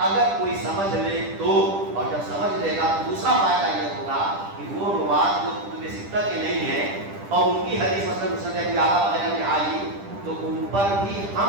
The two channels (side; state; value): left; late; 10 ms